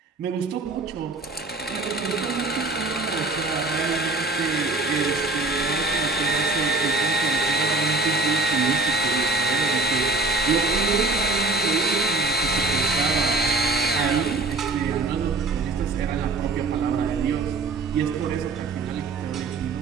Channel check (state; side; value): quieter; left; 3.4 dB